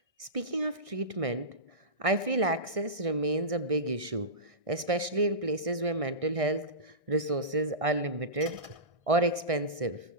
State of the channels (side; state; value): left; late; 1.6 ms